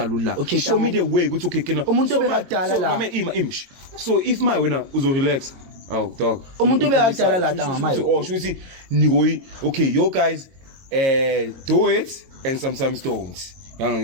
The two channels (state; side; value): late; left; 22 ms